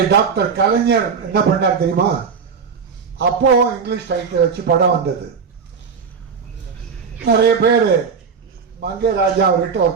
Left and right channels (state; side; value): quieter; left; 5.9 dB